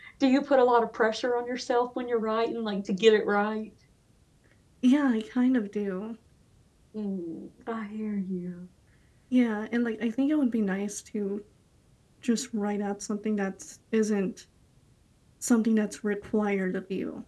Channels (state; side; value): identical; both; correlation 1.00